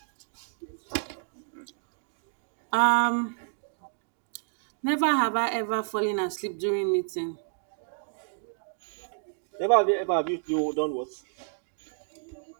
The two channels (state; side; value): silent; left; digital silence